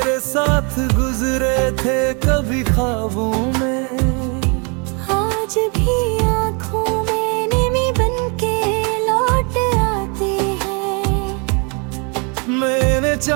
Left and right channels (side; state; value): left; quieter; 34.1 dB